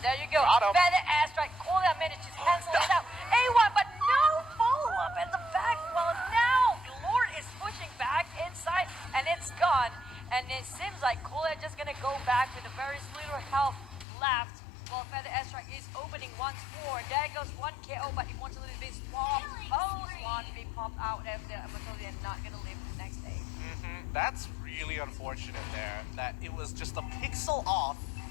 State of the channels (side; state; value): right; drops out; at 14.1 s